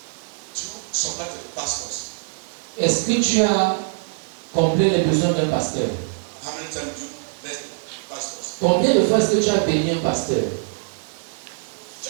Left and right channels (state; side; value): silent; left; digital silence